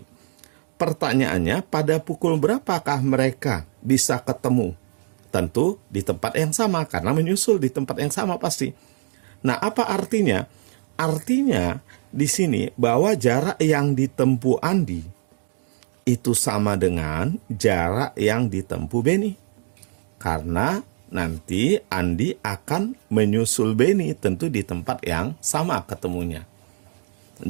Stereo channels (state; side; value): silent; left; digital silence